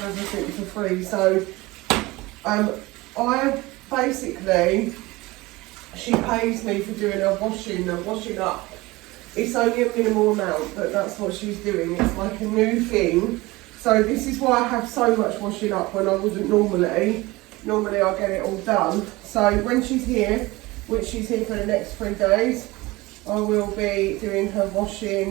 everything for free. So I basically, she pays me for doing her washing up. It's only a minimal amount, but that's what she's doing. It's like a new thing. So this is why I have so much washing up when I wouldn't normally. Normally I get it all done. So when she's here, which she's here for the next 3 days, I will be doing her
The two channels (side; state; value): left; quieter; 21.1 dB